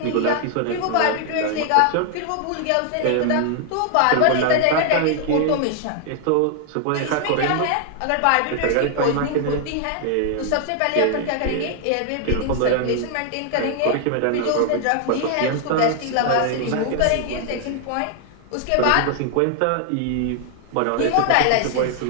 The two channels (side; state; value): both; different; correlation 0.00